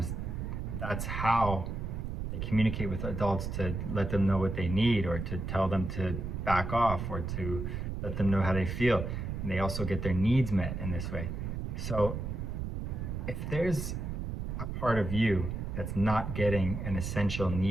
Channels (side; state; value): right; noise; rumble, 4 dB below the sound